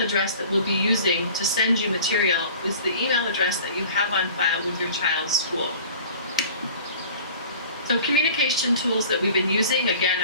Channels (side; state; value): both; inverted; correlation -0.44